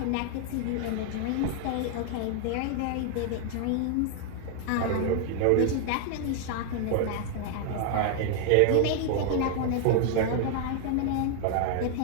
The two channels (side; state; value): both; different; correlation 0.00